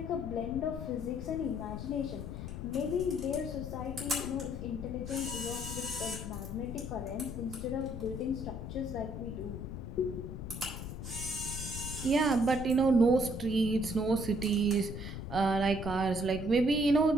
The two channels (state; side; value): noise; left; rumble, 7 dB below the sound